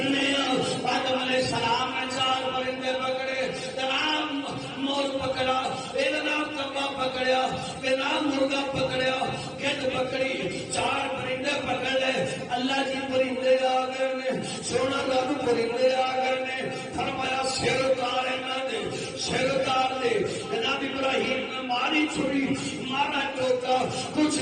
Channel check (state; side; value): identical; both; correlation 1.00